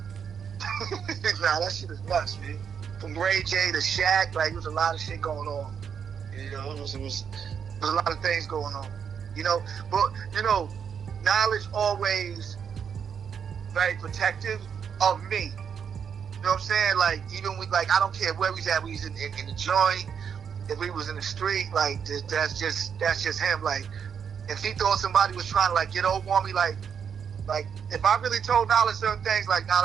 Nah, that shit is nuts, man. From Ray J to Shaq, like, there was a lot of shit going on. You know, it was a lot of things going on. You know, but you know, Knowledge always very protective of me. You know what I'm saying? Like, even with, like, I don't care where we at. We was in the joint. If we was in the street, like, that's just him. Like, if he thought somebody was trying to like get over on me, like if I really told Knowledge certain things, like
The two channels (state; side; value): quieter; left; 7.3 dB